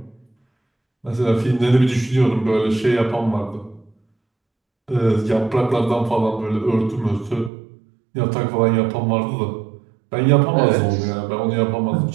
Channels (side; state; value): left; drops out; at 7.5 s